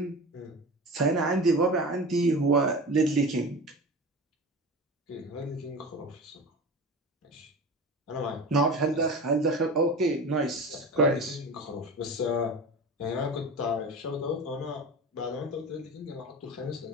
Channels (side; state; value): both; normal; correlation 0.31